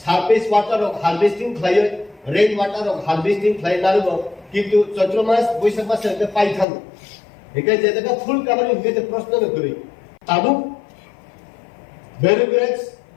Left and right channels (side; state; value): right; drops out; at 6.7 s